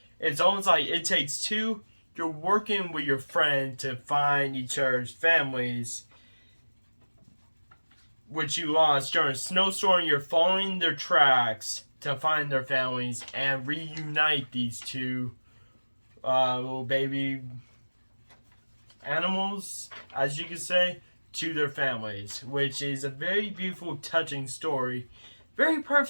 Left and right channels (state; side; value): inverted; both; correlation -1.00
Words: It's almost like it takes two. You're working with your friend to find each other's families, which you lost during a snowstorm. You're following their tracks to find their families and reunite these two little baby animals, as you could say, to their families, which is a very beautiful, touching story. Very